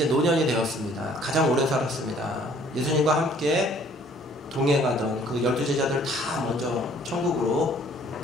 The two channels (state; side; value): normal; both; correlation 0.58